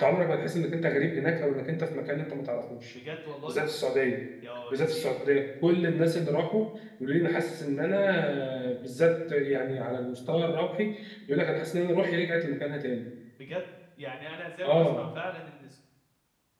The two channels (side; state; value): both; identical; correlation 1.00